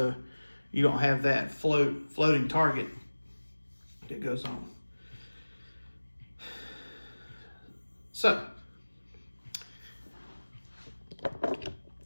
you don't have that floating target that goes on. So,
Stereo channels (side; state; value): both; inverted; correlation -1.00